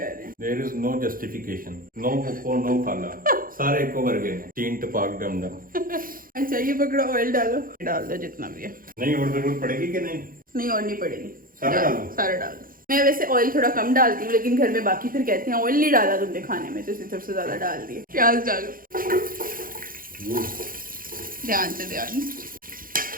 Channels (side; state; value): left; late; 0.41 ms